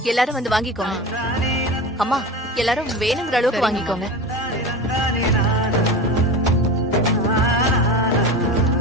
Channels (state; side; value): normal; both; correlation 0.29